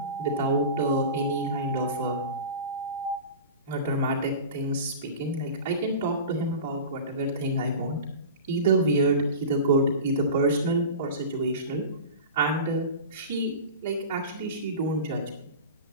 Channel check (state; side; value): inverted; both; correlation -0.32